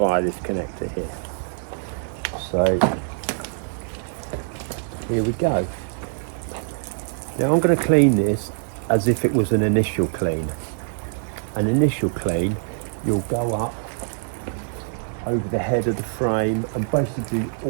this connector here. So here we go. Now I'm going to clean this as if it was an initial clean. An initial clean, you'll go up over the head of the frame and basically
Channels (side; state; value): left; silent; digital silence